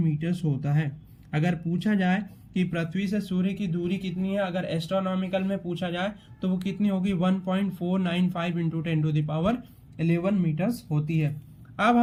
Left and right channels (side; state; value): both; identical; correlation 1.00